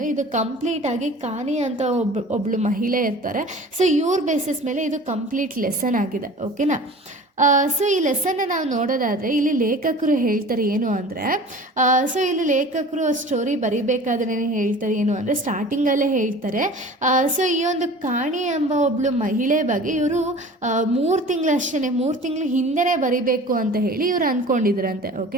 ಇದು ಕಂಪ್ಲೀಟಾಗಿ ಕಾನಿ ಅಂತ ಒಬ್ಳು ಮಹಿಳೆ ಇರ್ತಾರೆ. ಸೊ ಇವ್ರ ಬೇಸಿಸ್ ಮೇಲೆ ಇದು ಕಂಪ್ಲೀಟ್ ಲೆಸನ್ ಆಗಿದೆ. ಓಕೆನಾ? ಸೊ ಈ ಲೆಸನ್ನ ನಾವು ನೋಡೋದಾದರೆ ಇಲ್ಲಿ ಲೇಖಕರು ಹೇಳ್ತಾರೆ ಏನು ಅಂದರೆ, ಸೊ ಇಲ್ಲಿ ಲೇಖಕರು ಸ್ಟೋರಿ ಬರಿಬೇಕಾದ್ರೆ ಹೇಳ್ತಾರೆ ಏನು ಅಂದರೆ, ಸ್ಟಾರ್ಟಿಂಗಲ್ಲೇ ಹೇಳ್ತಾರೆ. ಸೊ ಈ ಒಂದು ಕಾಣಿ ಎಂಬ ಒಬ್ಳು ಮಹಿಳೆ ಬಗ್ಗೆ ಇವರು 3 ತಿಂಗಳು ಹಿಂದೆನೇ ಬರಿಬೇಕು ಅಂತ ಹೇಳಿ ಇವರು ಅಂದ್ಕೊಂಡಿದ್ರಂತೆ.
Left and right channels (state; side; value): normal; both; correlation 0.42